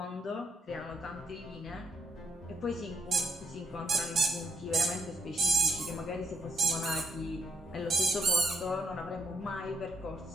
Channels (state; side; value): normal; both; correlation 0.73